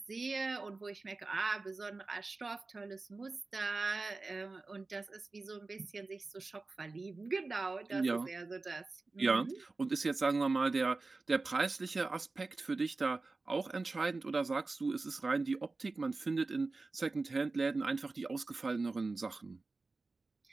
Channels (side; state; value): left; quieter; 3.6 dB